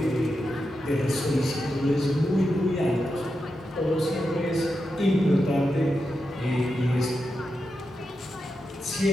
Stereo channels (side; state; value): both; normal; correlation 0.88